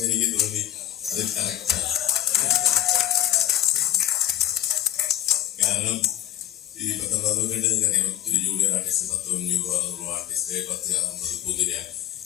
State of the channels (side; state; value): right; quieter; 12.9 dB